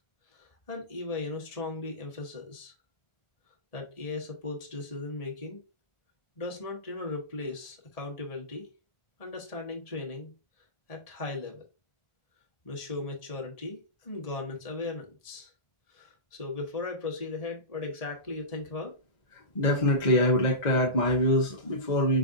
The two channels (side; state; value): right; late; 1.7 ms